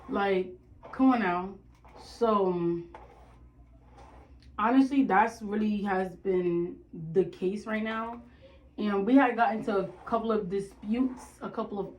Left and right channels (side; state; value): both; identical; correlation 1.00